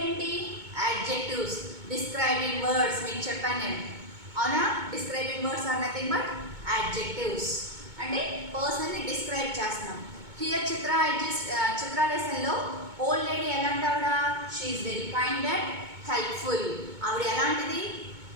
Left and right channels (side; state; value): left; late; 2.2 ms